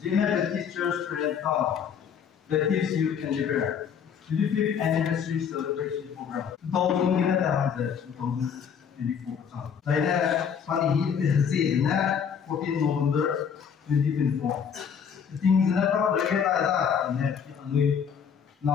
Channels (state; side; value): quieter; right; 7.3 dB